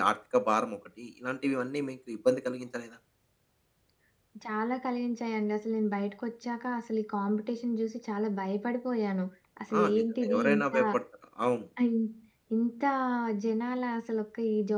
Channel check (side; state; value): both; identical; correlation 1.00